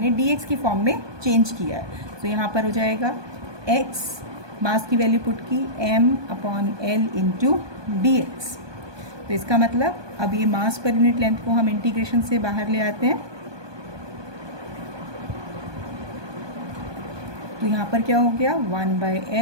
dx की फॉर्म में चेंज किया है. तो यहाँ पर हो जाएगा x, मास की वैल्यू पुट की m/L इंटू dx. तो इसका मतलब अब ये मास पर यूनिट लेंथ को हम इंटीग्रेशन से बाहर ले आते हैं. तो यहाँ पर क्या हो गया?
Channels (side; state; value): left; late; 1.2 ms